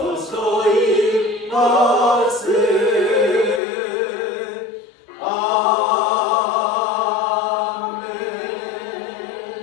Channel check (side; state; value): right; drops out; at 3.6 s